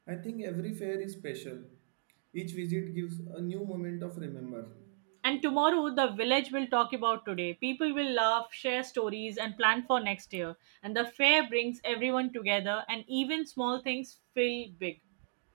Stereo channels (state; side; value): silent; left; digital silence